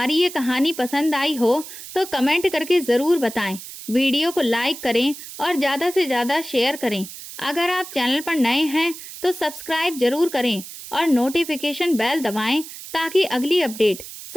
ये कहानी पसंद आई हो तो कमेंट करके ज़रूर बताएं। वीडियो को लाइक करें और ज़्यादा से ज़्यादा शेयर करें। अगर आप चैनल पर नए हैं तो सब्सक्राइब जरूर करें और नोटिफिकेशन बेल दबाएं ताकि अगली अपडेट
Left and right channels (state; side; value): noise; right; hiss, 13 dB below the sound